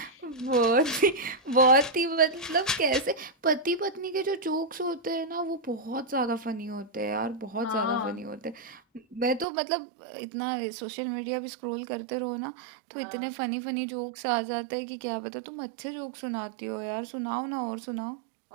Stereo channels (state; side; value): drops out; left; at 9.5 s